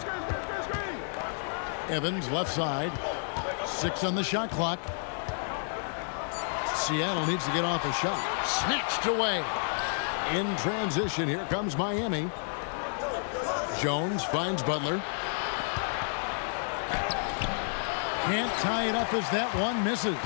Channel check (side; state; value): right; silent; 55 dB below the other